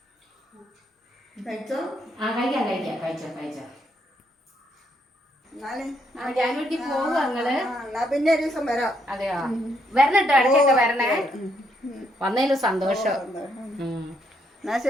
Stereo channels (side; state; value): both; normal; correlation 0.74